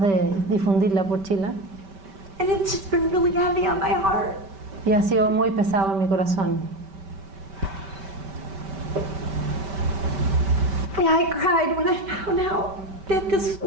de difundirla por Chile. And it's just been really heavy on my heart. Y ha sido muy pesado en mi corazón. I cried when I found out that this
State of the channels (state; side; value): late; left; 5.2 ms